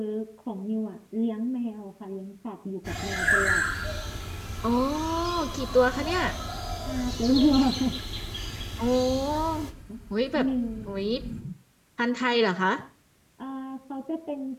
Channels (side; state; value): both; identical; correlation 1.00